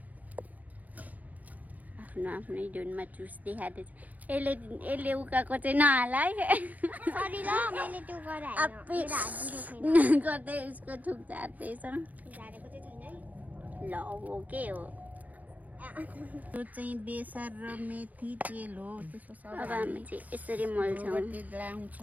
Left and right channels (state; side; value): late; left; 0.078 ms